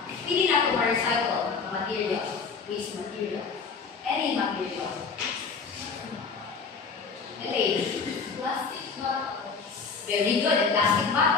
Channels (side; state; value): right; quieter; 5.2 dB